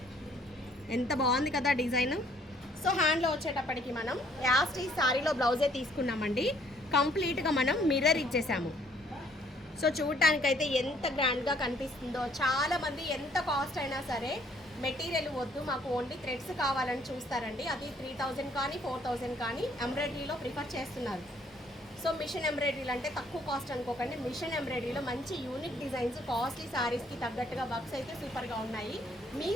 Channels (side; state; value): both; normal; correlation 0.64